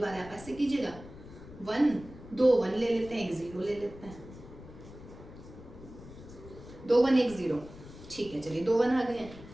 आप ऐसे कीजिएगा, 1 2 1 ले लेते हैं, एक 0 ले लेते हैं, 2 1 1 0, ठीक है। चलिए 2 1 आ गए हैं।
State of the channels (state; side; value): noise; left; rumble, 16 dB below the sound